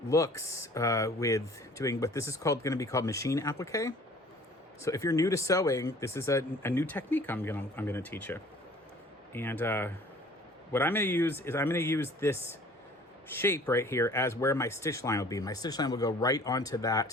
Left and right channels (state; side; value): normal; both; correlation 0.51